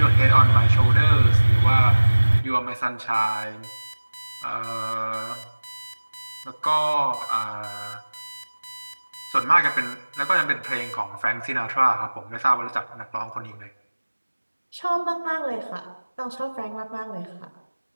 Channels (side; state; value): both; inverted; correlation -1.00